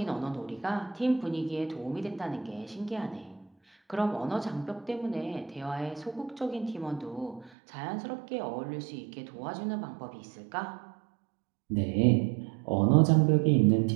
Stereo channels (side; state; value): left; drops out; at 7.5 s